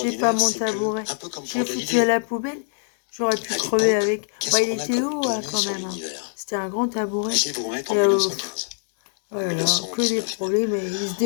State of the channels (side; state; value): right; silent; 62 dB below the other